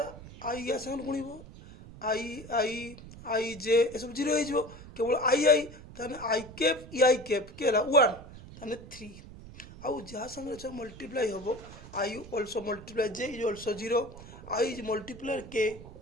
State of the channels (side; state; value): right; noise; rumble, 16 dB below the sound